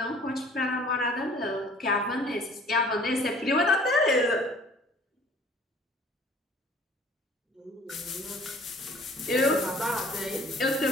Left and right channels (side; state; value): both; normal; correlation 0.52